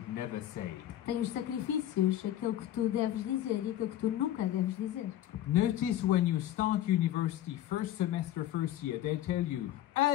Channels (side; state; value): right; quieter; 12.6 dB